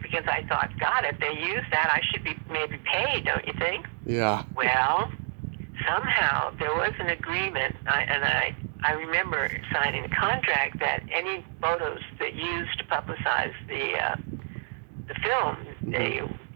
because I thought, God, if they use that, I should be maybe paid, don't you think? Yeah. Well, somehow there was an agreement, I remember signing a contract that any photos that used to publicize the film,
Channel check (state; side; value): silent; left; digital silence